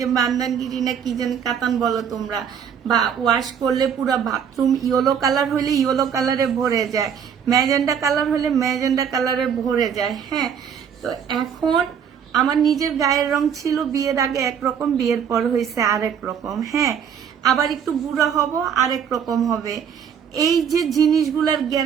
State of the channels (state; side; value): quieter; left; 7.8 dB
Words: বান্দানগিরি না কি যেন কাতান বলো তোমরা, বা ওয়াশ করলে পুরো বাথরুম ইয়েলো কালার হইলে ইয়েলো কালারে ভরে যায়, ম্যাজেন্ডা কালার হলে ম্যাজেন্ডা কালারে ভরে যায়। হ্যাঁ, তো এখন আমার নিজের গায়ের রং ছিল বিয়ের আগে একরকম, বিয়ের পর হয়েছে আরেক রকম। হ্যাঁ, আবার একটু বুড়া হব আরেক রকম হবে। এই যে জিনিসগুলোর